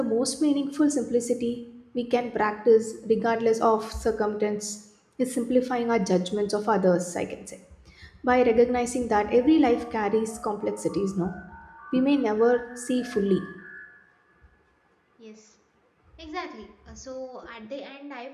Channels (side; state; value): both; identical; correlation 1.00